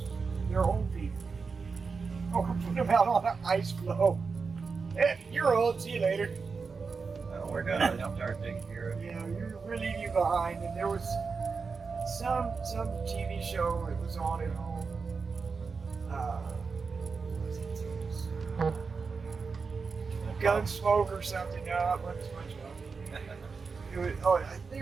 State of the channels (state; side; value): quieter; left; 4.9 dB